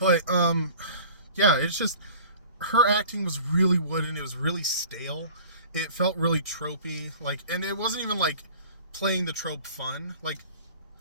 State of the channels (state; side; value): inverted; both; correlation -0.45